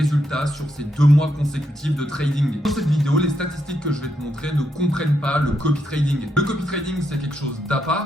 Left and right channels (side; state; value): both; normal; correlation 0.80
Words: sur ces 2 mois consécutifs de trading. Dans cette vidéo, les statistiques que je vais te montrer ne comprennent pas le copy trading. Le copy trading, c'est quelque chose d'à